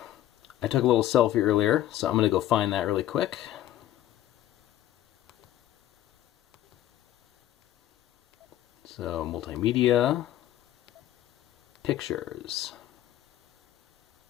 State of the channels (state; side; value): quieter; right; 13.0 dB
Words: I took a little selfie earlier, so I'm going to go find that really quick. So multimedia, pictures.